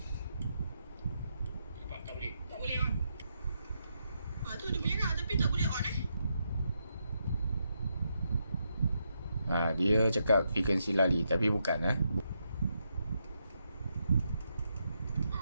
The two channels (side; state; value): both; inverted; correlation -0.81